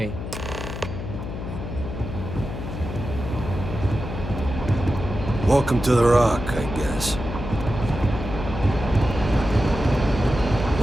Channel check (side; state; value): left; noise; hum, 7 dB below the sound